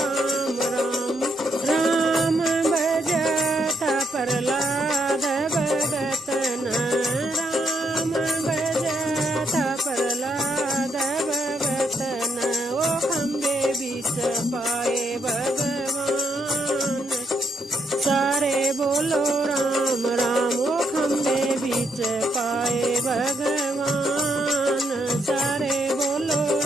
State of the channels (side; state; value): both; normal; correlation 0.76